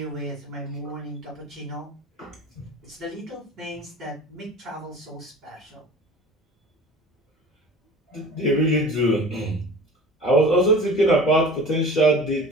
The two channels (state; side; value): normal; both; correlation 0.40